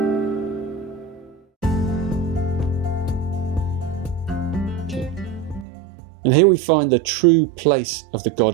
And here we find the true place of the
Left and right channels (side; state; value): left; drops out; at 5.7 s